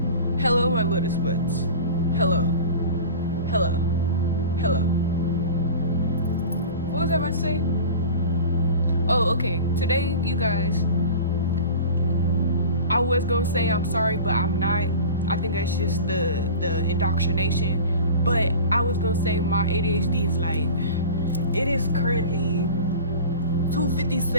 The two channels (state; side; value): inverted; both; correlation -0.35